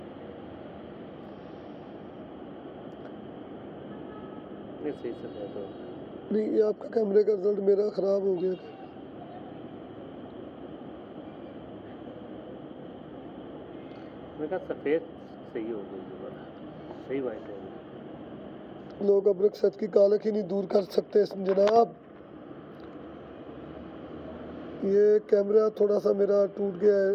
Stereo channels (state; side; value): identical; both; correlation 1.00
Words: सही से बात हो। नहीं, ये आपका कैमरे का रिजल्ट मेरा ख़राब हो गया। मैंने कहा सफ़ेद सही हो गई दोबारा, सही वाइट हो गई। लोग अब रुखसत की कालक ही नहीं दूर कर सकते जनाब। ये कैमरा थोड़ा सा मेरा टूट गया है,